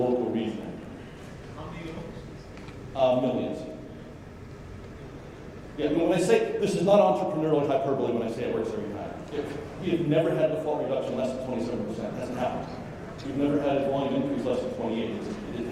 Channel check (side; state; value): both; identical; correlation 1.00